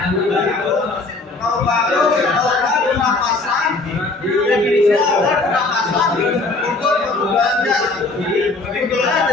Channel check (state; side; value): quieter; right; 3.4 dB